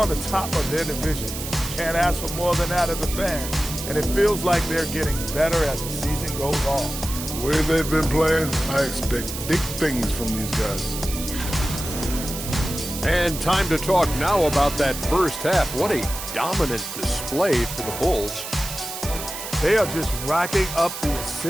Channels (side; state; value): right; noise; hiss, 8 dB below the sound